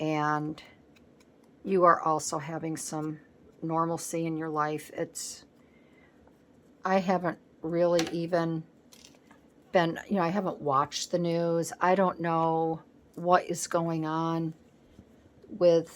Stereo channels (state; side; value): identical; both; correlation 1.00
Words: you are also having some normalcy in your life. I haven't really even been, I haven't watched the news. I don't know what is going on